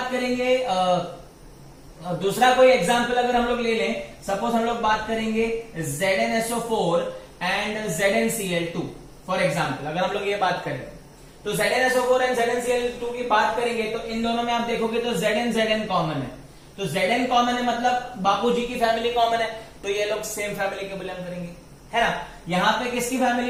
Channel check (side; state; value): both; identical; correlation 1.00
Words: करेंगे दूसरा कोई एग्जाम्पल अगर हम लोग ले लें, सपोज हम लोग बात करेंगे ZnSO4 and ZnCl2 for example, अगर हम लोग ये बात करें तो ZnSO4 एंड ZnCl2 की बात करेंगे तो इन दोनों में आप देखोगे तो Zn कॉमन है। तो Zn कॉमन है मतलब बापूजी की फैमिली कॉमन है, तो ये लोग सेम फैमिली के बिलोंग करेंगे, है ना। यहाँ पे किसकी